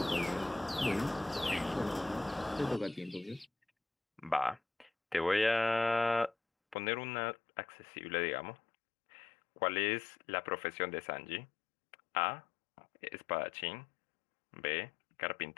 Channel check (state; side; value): drops out; right; at 6.8 s